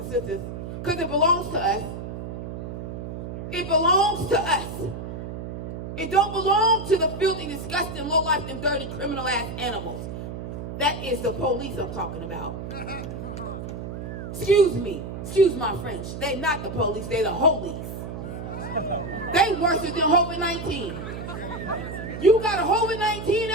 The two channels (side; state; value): right; noise; hum, 7 dB below the sound